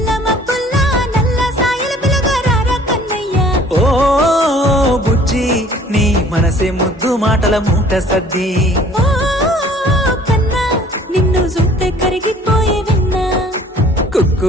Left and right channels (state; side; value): normal; both; correlation 0.53